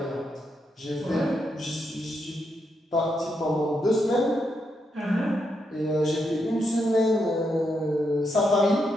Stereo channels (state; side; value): normal; both; correlation 0.81